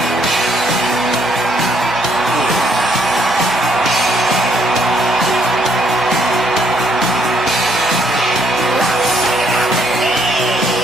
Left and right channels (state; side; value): normal; both; correlation 0.70